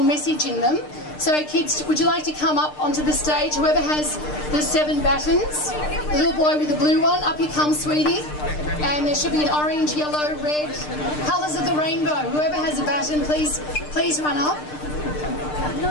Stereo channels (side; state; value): right; late; 6.6 ms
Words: message in them. So kids, would you like to come up onto the stage? Whoever has the 7 batons, the little boy with the blue one, up you come, sweetie. And there should be an orange, yellow, red, colours of the rainbow. Whoever has a baton, please run up.